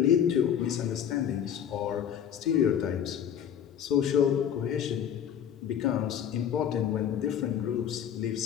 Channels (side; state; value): right; quieter; 9.2 dB